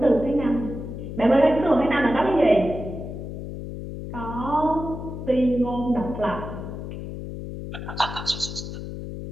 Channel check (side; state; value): left; noise; hum, 8 dB below the sound